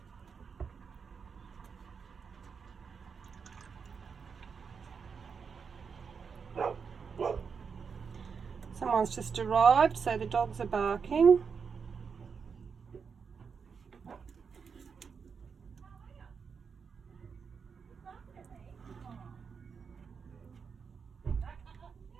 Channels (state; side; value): quieter; left; 5.9 dB